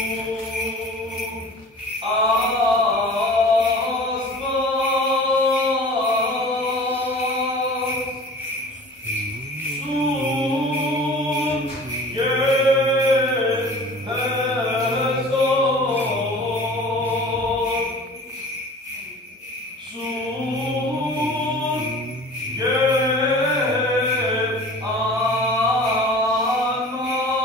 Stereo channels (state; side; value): normal; both; correlation 0.42